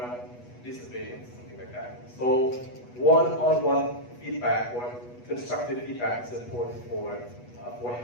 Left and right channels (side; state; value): right; late; 8.2 ms